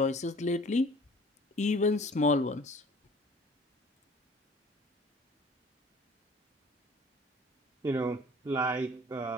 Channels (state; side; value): normal; both; correlation 0.50